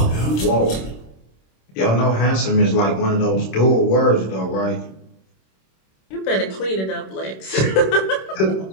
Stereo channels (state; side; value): late; right; 26 ms